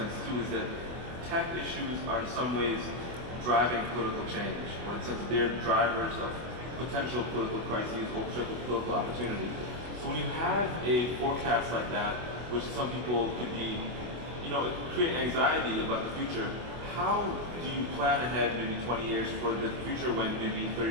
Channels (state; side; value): late; left; 24 ms